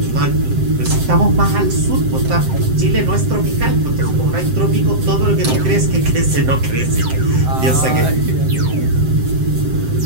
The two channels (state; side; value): late; left; 7.7 ms